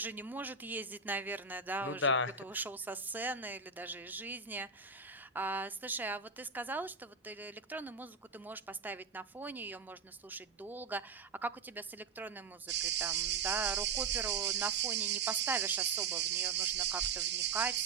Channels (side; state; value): left; quieter; 4.8 dB